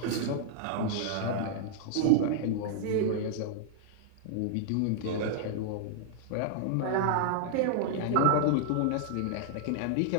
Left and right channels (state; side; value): different; both; correlation -0.01